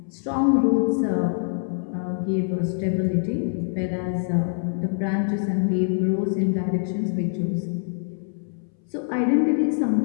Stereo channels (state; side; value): silent; right; 62 dB below the other